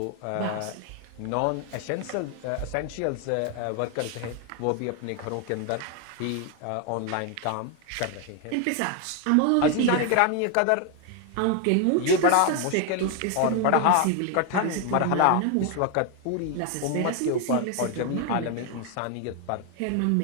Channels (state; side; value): different; both; correlation 0.01